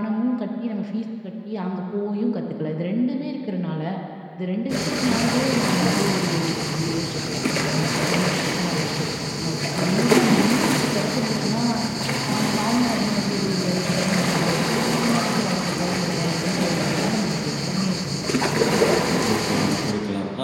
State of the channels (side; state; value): both; identical; correlation 1.00